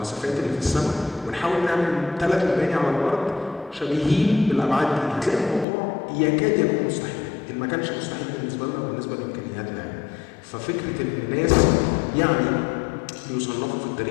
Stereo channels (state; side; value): drops out; right; at 5.7 s